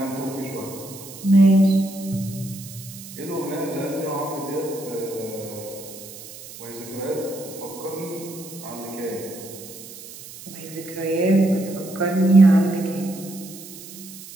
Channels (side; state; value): right; noise; hiss, 15 dB below the sound